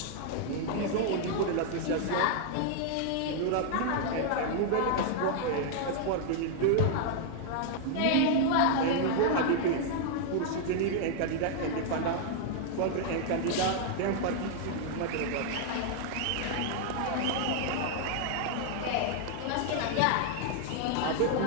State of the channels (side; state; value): both; different; correlation 0.00